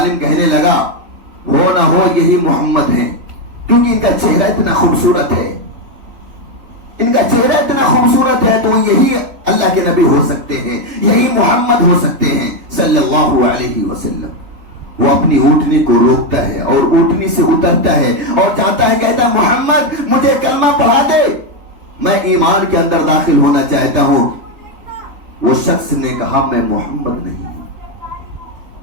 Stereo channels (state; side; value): late; left; 3.4 ms